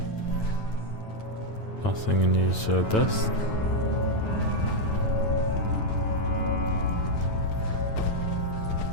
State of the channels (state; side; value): late; right; 9.1 ms